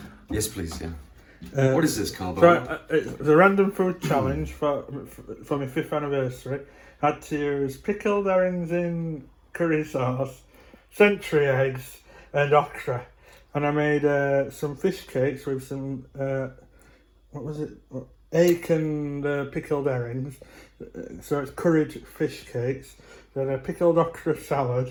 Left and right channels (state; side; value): identical; both; correlation 1.00